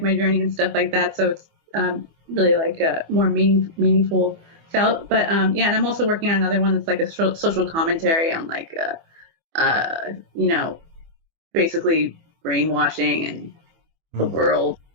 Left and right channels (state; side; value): late; left; 24 ms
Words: my journey and stuff like that. So it's really like more meaningful felt. But yeah, and I'm also working on another one that's like a social commentary on like basically brainwashing and the world